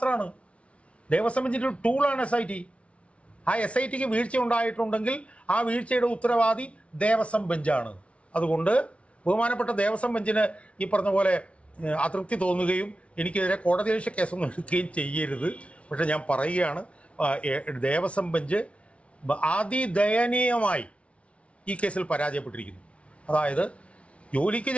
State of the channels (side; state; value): right; late; 0.062 ms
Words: ദേവസ്വം ബെഞ്ചിൻ്റെ ഒരു ടൂളാണ് SIT. ആ SITക്ക് വീഴ്ച ഉണ്ടായിട്ടുണ്ടെങ്കിൽ ആ വീഴ്ചയുടെ ഉത്തരവാദി ദേവസ്വം ബെഞ്ചാണ്. അതുകൊണ്ട് ബഹുമാനപ്പെട്ട ദേവസ്വം ബെഞ്ചിന് ഈ പറഞ്ഞ പോലെ അതൃപ്തി തോന്നുകയും എനിക്കെതിരെ കോടതിയലക്ഷ്യ കേസൊന്നും എടുക്കുകയും ചെയ്യരുത്. പക്ഷെ ഞാൻ പറയുകയാണ്, ദേവസ്വം ബെഞ്ച് അതിദയനീയമായി ഈ കേസിൽ പരാജയപ്പെട്ടിരിക്കുന്നു. അതായത് ജോലിക്ക്